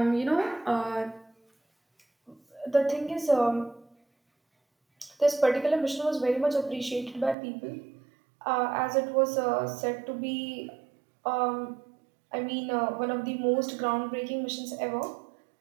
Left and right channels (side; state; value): left; drops out; at 7.4 s